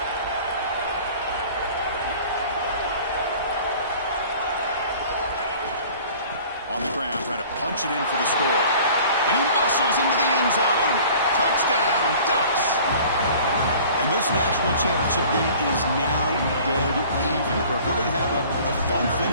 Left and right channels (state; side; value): inverted; both; correlation -0.47